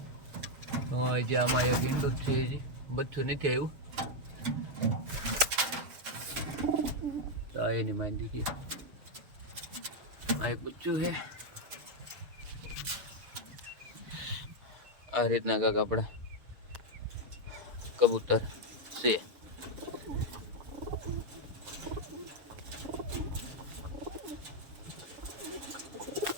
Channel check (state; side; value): late; left; 6.8 ms